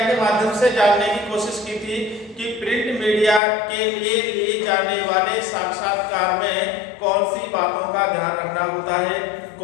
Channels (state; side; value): drops out; right; at 3.4 s